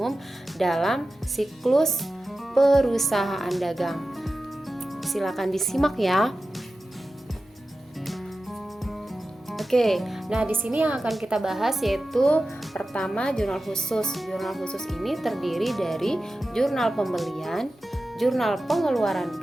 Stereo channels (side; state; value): both; normal; correlation 0.94